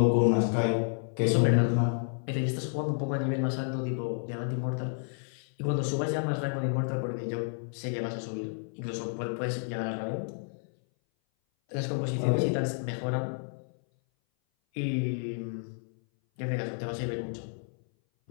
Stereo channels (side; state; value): right; silent; 57 dB below the other